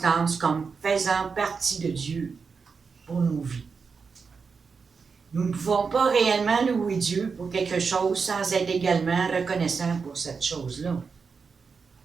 comme faisant partie de Dieu pour nos vies. Nous ne pouvons pas réellement louer Dieu pour quelque chose sans être également reconnaissants pour cette chose-là.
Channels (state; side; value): quieter; left; 5.3 dB